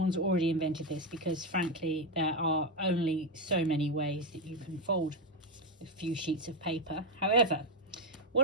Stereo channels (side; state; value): both; normal; correlation 0.07